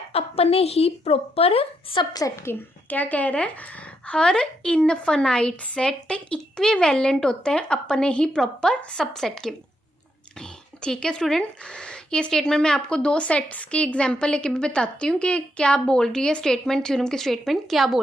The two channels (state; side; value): normal; both; correlation 0.79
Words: अपने ही प्रॉपर सबसेट के। क्या कह रहा है? हर इनफाइनाइट सेट इक्विवेलेंट होता है अपने ही प्रॉपर सबसेट के। ठीक है स्टूडेंट, ये स्टेटमेंट मैं आपको दो सेट्स की एग्जांपल लेके भी बताती हूँ कि क्या बोल रही है स्टेटमेंट, थ्योरम की स्टेटमेंट क्या